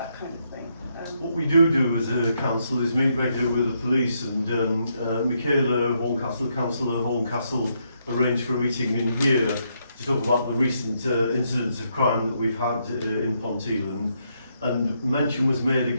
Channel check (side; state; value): both; inverted; correlation -0.77